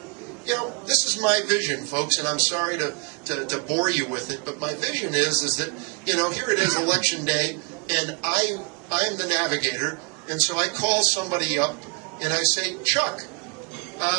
This is my vision, folks, and I'm sorry to bore you with it, but my vision is that, here it is, Election Day, and I'm the navigator, and so I call somebody up, and I say, Chuck,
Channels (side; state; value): left; quieter; 32.7 dB